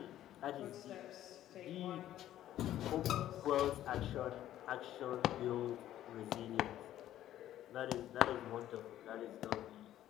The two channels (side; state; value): right; quieter; 12.6 dB